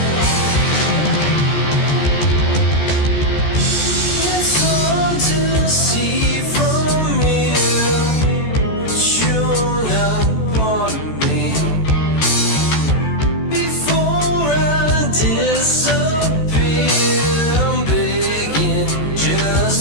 It's hard to see from here.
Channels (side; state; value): right; late; 14 ms